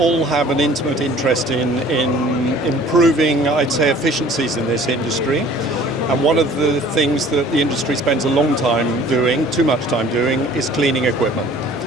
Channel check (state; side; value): normal; both; correlation 0.51